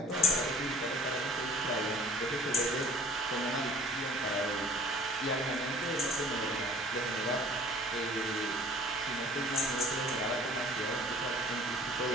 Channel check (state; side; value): normal; both; correlation 0.51